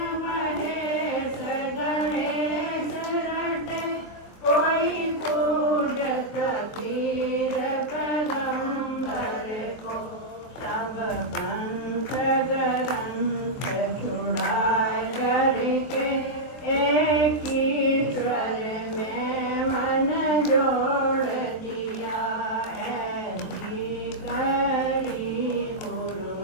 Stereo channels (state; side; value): late; right; 23 ms